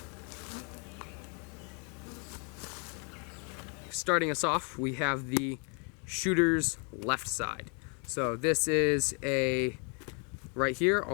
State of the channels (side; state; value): right; quieter; 37.0 dB